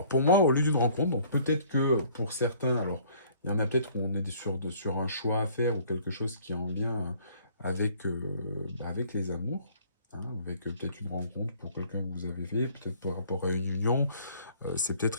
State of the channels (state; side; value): inverted; both; correlation -0.57